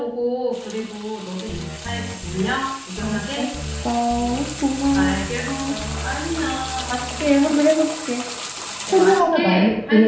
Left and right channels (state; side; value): identical; both; correlation 1.00